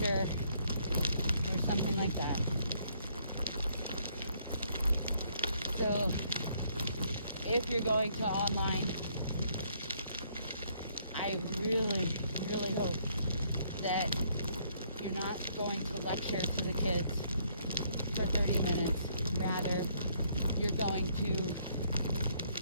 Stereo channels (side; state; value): both; inverted; correlation -0.68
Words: or something like that. So if you're going to online, I really, really hope that you're not going to lecture to the kids for 30 minutes. Rather, you're going to